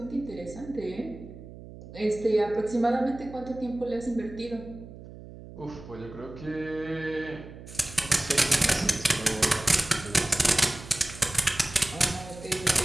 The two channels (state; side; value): noise; right; hum, 15 dB below the sound